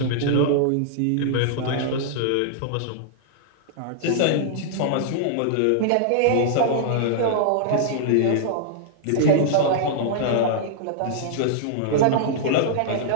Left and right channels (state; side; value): different; both; correlation -0.01